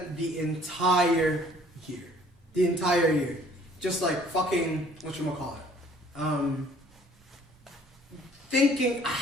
the entire year, just like fucking whatchamacallit, thinking,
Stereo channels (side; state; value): both; normal; correlation 0.57